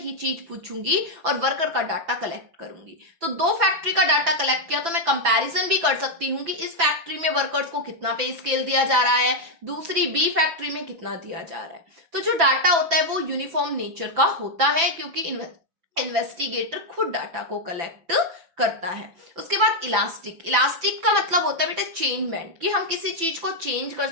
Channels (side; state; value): left; late; 6.0 ms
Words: चीज पूछूंगी और वर्कर का डाटा कलेक्ट करूंगी। तो दो फैक्ट्री का डाटा कलेक्ट किया तो मैं कंपैरिजन भी कर सकती हूँ कि इस फैक्ट्री में वर्कर्स को कितना पे स्केल दिया जा रहा है, दूसरी बी फैक्ट्री में कितना दिया जा रहा है। तो जो डाटा होता है वो यूनिफॉर्म नेचर का होता है क्योंकि इन्वेस्टिगेटर खुद डाटा को कलेक्ट करता है। उसके बाद इलास्टिक, इलास्टिक का मतलब होता है बेटा चेंजमेंट, कि हम किसी चीज को चेंज कर